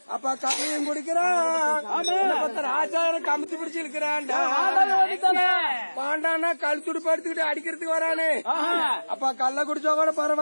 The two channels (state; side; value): inverted; both; correlation -1.00